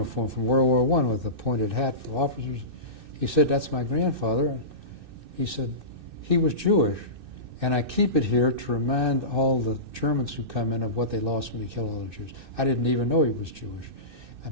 from World War I with a pointed hat for officers. He said, "That's my grandfather." And he said, "He was Jewish, and I keep it here to remind all the Germans who come in of what they lost when they killed all the Jews." I didn't even know he was Jewish. I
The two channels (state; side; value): late; left; 2.6 ms